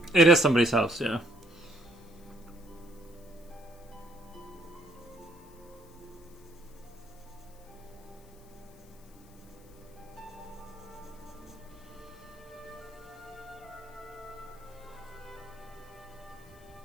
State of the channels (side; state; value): left; noise; hiss, 26 dB below the sound